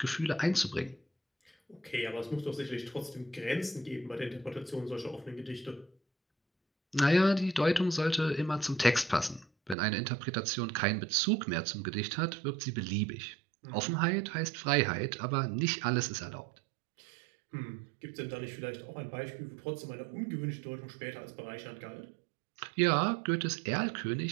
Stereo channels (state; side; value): drops out; left; at 9.8 s